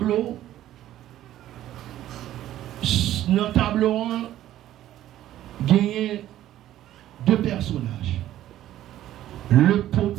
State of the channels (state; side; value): quieter; left; 13.1 dB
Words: Dans le tableau, gagner deux personnages. Le